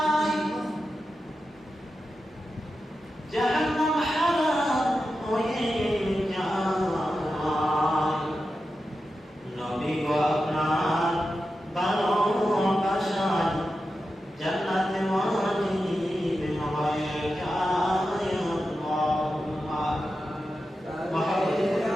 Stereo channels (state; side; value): normal; both; correlation 0.91